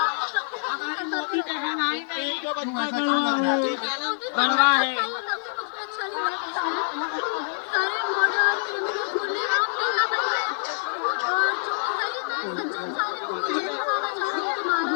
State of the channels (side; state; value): right; silent; digital silence